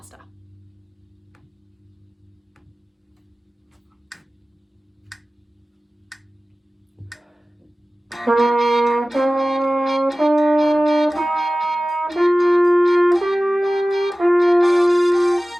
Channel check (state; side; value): normal; both; correlation 0.97